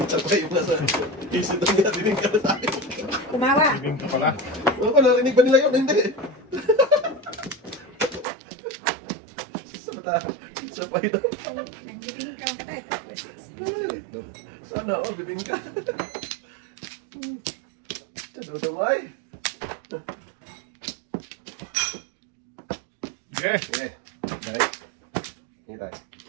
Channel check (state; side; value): drops out; left; at 8.2 s